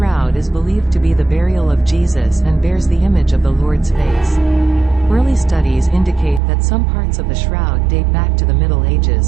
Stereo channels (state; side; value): drops out; left; at 6.4 s